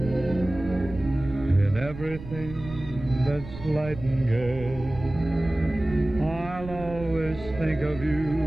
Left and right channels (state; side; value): noise; right; rumble, 13 dB below the sound